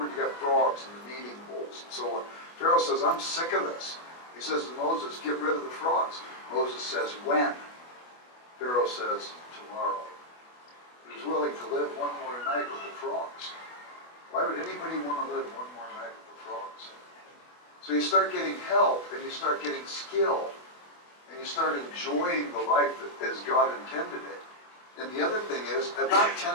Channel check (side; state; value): right; late; 24 ms